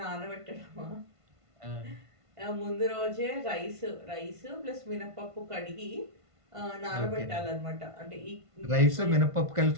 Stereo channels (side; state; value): left; late; 1.5 ms